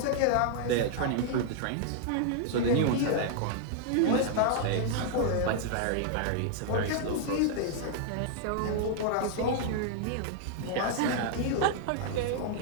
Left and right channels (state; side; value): different; both; correlation -0.01